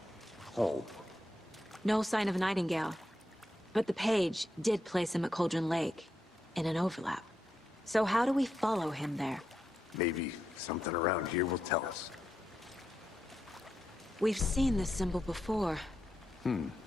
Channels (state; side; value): normal; both; correlation 0.84